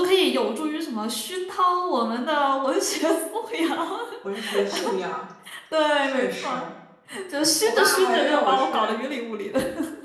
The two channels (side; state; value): both; identical; correlation 1.00